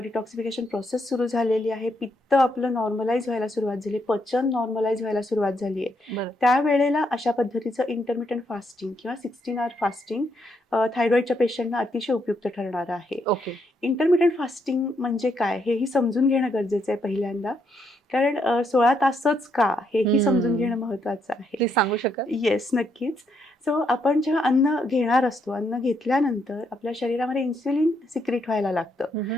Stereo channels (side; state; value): both; normal; correlation 0.76